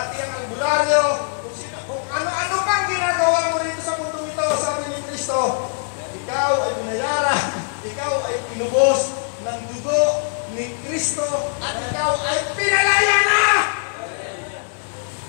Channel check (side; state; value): right; silent; 65 dB below the other